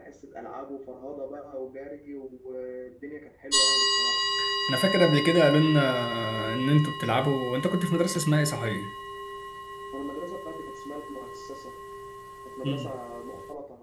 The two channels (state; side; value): identical; both; correlation 1.00